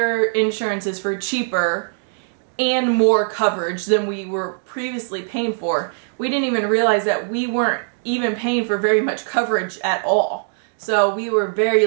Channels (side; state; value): left; silent; digital silence